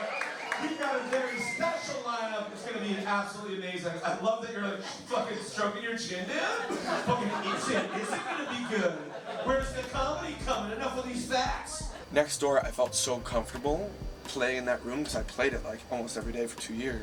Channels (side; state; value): both; identical; correlation 1.00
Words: We've got a very special lineup. It's going to be absolutely amazing. I love that you're like fucking stroking your chin down. Fucking, is it going to be good? Where's the comedy coming? Enough of these facts. Next door, I felt so comfortable playing in that room because I played it like almost every day for 2